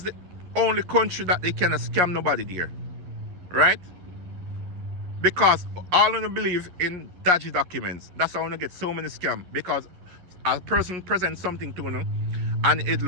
the only country that they cannot scam nobody there, right? Because all of them believe in dodgy documents. That's how they get so many scams, because a person presents something to them and it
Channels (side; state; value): left; late; 11 ms